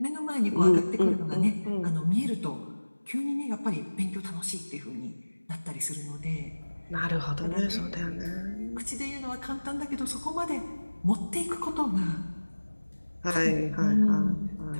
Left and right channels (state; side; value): inverted; both; correlation -1.00